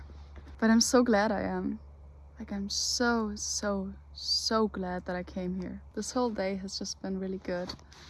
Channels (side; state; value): both; identical; correlation 1.00